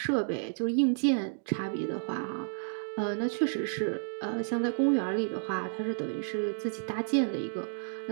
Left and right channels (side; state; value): left; silent; digital silence